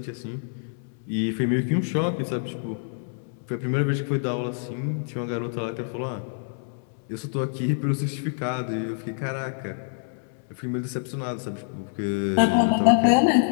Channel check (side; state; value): right; silent; 61 dB below the other